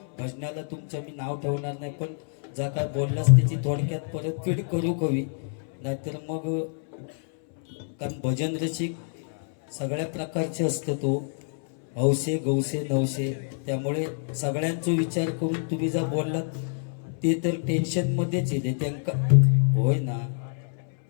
भजनाला तुमचं मी नाव ठेवणार नाही, पण जा काय बोललास त्याची थोडक्यात परतफेड करू कवी, नाहीतर मग कारण भजन रसिक सगळ्या प्रकारचे असतं, तो हौसे गौसे नवसे, त्यामुळे सगळ्यांचा विचार करून तुम्ही जर बोललात ते तर टेन्शनमध्येच येते त्यांका. होय ना,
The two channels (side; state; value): right; silent; 60 dB below the other